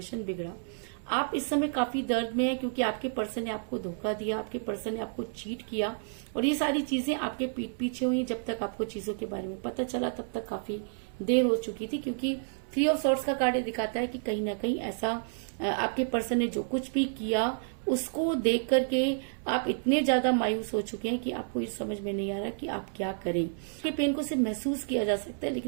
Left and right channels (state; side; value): silent; left; 58 dB below the other